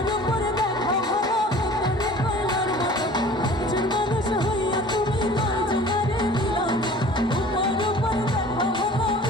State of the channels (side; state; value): both; normal; correlation 0.45